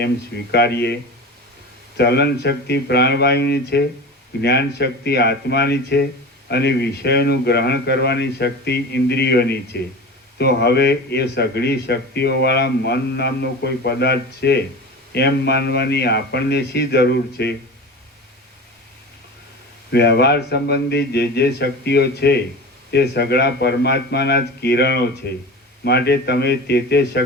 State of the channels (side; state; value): both; normal; correlation 0.32